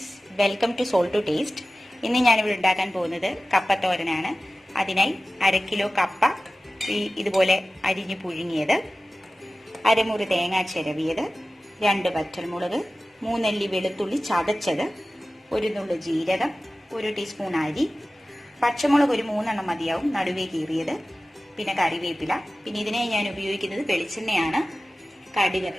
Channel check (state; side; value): normal; both; correlation 0.96